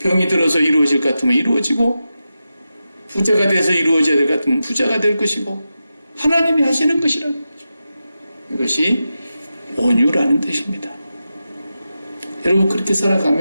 들어서 이루어질 것 같으면 이루어지고 부자가 돼서 이루어져야 될 것 같으면 부자가 될 것이고 하나님이 하시는 것이라는 거죠. 이것이 온유라는 뜻입니다. 여러분 그렇게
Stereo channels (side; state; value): both; inverted; correlation -0.91